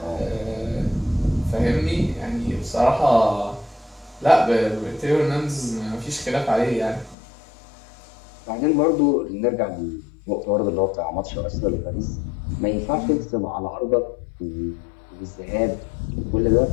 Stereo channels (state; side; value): drops out; right; at 7.2 s